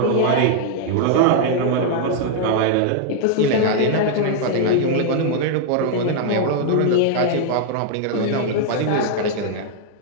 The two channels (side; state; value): both; different; correlation -0.01